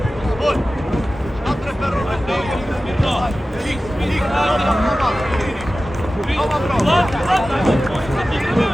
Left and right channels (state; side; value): normal; both; correlation 0.95